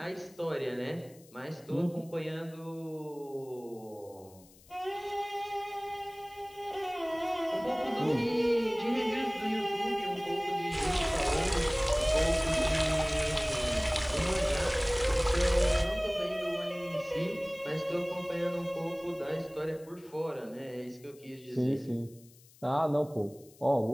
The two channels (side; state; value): left; noise; hiss, 25 dB below the sound